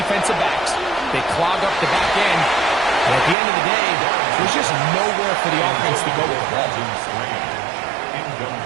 backs. They clog up the back end. And at the end of the day, there's just nowhere for the offense to go with the ball.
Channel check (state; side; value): drops out; left; at 3.4 s